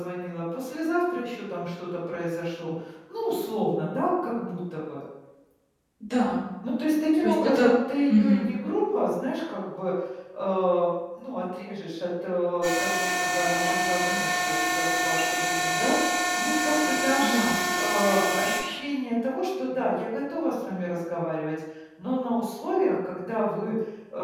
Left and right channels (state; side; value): identical; both; correlation 1.00